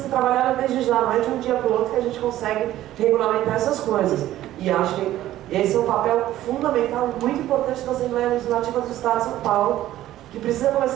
trabalhada desde já, não é de um dia para o outro que a gente consegue regulamentar essas coisas. E acho que esse é um papel fundamental, muito importante da Assembleia Legislativa do Estado de São Paulo, que precisa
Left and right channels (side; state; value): left; quieter; 13.9 dB